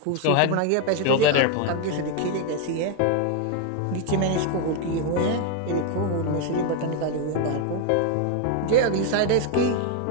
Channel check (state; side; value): different; both; correlation 0.01